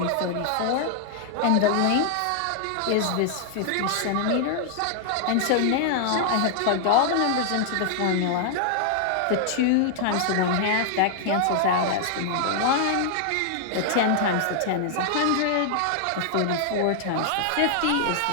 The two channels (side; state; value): both; different; correlation 0.00